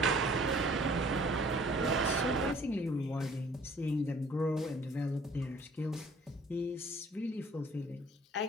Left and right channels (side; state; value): both; normal; correlation 0.55